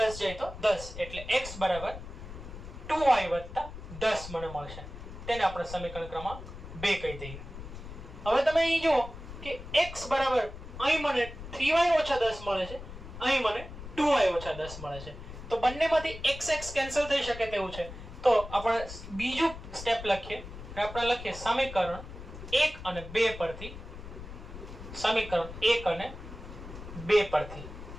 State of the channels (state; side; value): noise; left; rumble, 12 dB below the sound